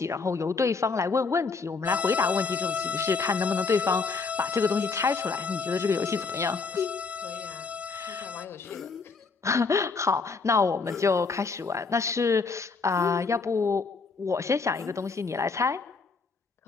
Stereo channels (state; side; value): quieter; right; 4.6 dB